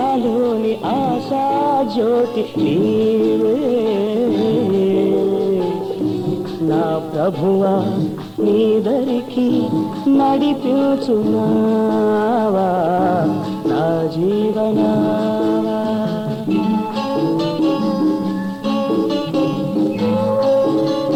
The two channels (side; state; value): both; identical; correlation 1.00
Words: ఆశా జ్యోతి నీవే నా ప్రభువా నీ దరికి నడిపించునావా నా జీవనావా